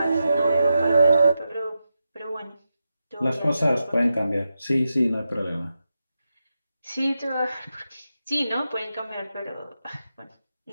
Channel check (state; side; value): inverted; both; correlation -0.89